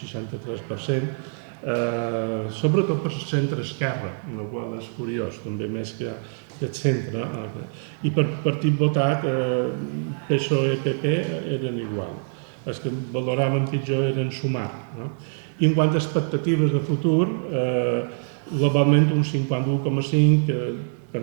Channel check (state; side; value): silent; left; 60 dB below the other